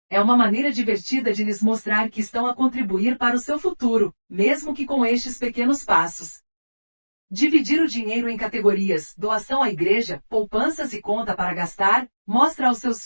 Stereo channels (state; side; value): inverted; both; correlation -1.00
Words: É uma maneira divertida de lhes mostrar que estão a contribuir para o seu futuro, mesmo que com estes pequenos passos. Dividir o dinheiro em categorias, doação à igreja, poupanças e conta para gastar, mostra aos seus